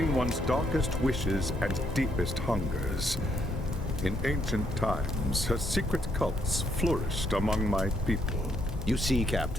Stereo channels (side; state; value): both; normal; correlation 0.73